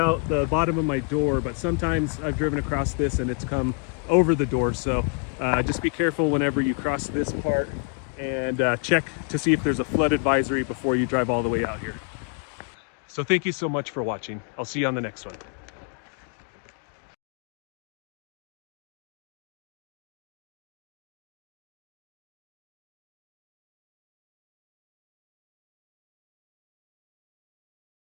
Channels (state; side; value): quieter; right; 36.3 dB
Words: the bottom of my door, but sometimes I've driven across this and it's come over the door. So just be careful whenever you cross this part, and check to see if there's a flood advisory before you drive all the way out here. So thank you so much for watching. I'll see you on the next one.